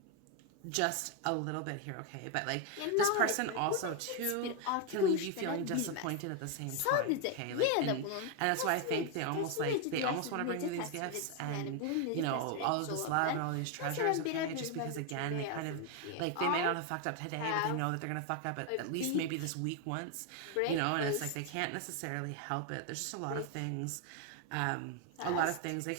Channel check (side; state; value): both; different; correlation 0.01